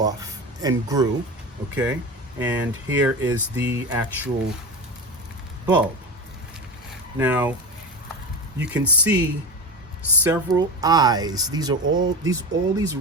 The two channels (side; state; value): both; normal; correlation 0.24